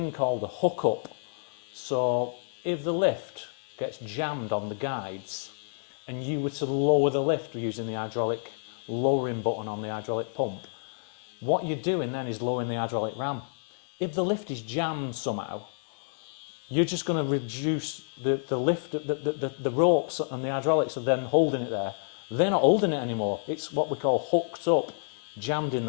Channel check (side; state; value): right; silent; digital silence